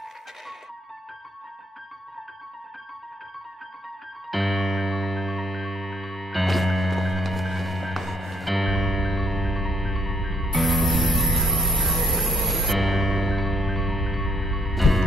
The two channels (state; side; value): normal; both; correlation 0.71